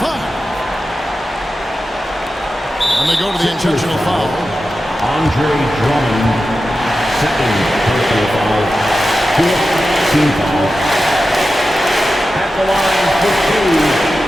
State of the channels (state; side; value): normal; both; correlation 0.92